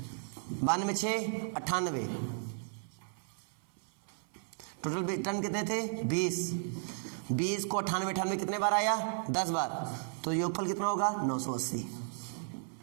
92 6 98। टोटल टर्म कितने थे, 20। 20 को 98 कितने बार आया, 10 बार। तो योगफल कितना होगा, 980।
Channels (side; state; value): left; silent; 55 dB below the other